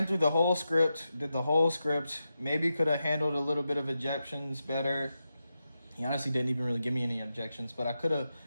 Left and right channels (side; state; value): both; inverted; correlation -0.89